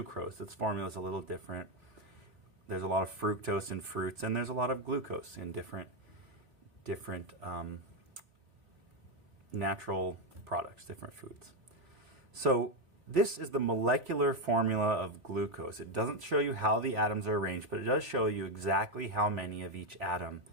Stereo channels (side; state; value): left; late; 3.7 ms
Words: Its formula is a little different. There's a lot of fructose in fruits, and there's a lot of glucose in different natural products, different foods. So this is the molecular formula of glucose. It doesn't show you how the atoms are arranged, but it does show you exactly how many of each atom